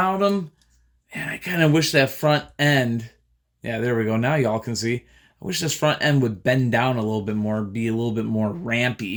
him, man, I kind of wish that front end. Yeah, there we go. Now y'all can see. I wish this front end would bend down a little bit more, be a little bit more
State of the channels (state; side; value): identical; both; correlation 1.00